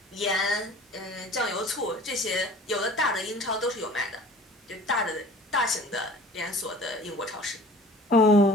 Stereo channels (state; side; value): normal; both; correlation 0.46